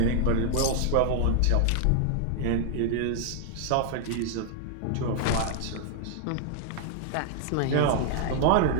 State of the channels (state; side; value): different; both; correlation 0.00